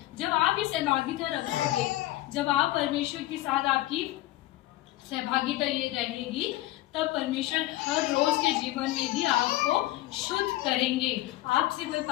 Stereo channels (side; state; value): right; quieter; 16.5 dB